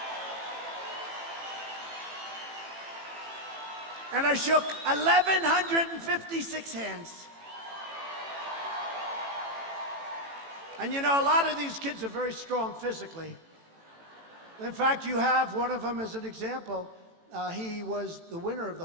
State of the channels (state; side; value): late; left; 18 ms